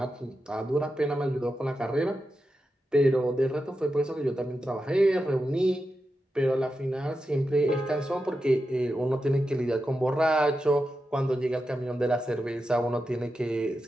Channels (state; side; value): normal; both; correlation 0.89